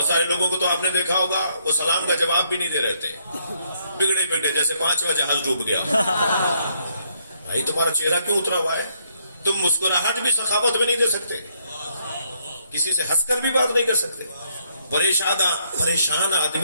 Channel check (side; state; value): both; inverted; correlation -0.71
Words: سارے لوگوں کو تو آپ نے دیکھا ہوگا وہ سلام کا جواب بھی نہیں دے رہے تھے, بگڑے بگڑے جیسے 5واں جہاز ڈوب گیا. بھائی تمہارا چہرہ کیوں اترا ہوا ہے؟ تم مسکراہٹ بھی سخاوت میں نہیں دے سکتے, کسی سے ہنس کر بھی بات نہیں کر سکتے. پریشان